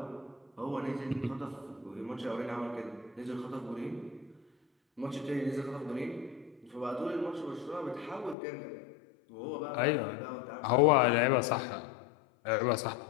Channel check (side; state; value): right; drops out; at 8.3 s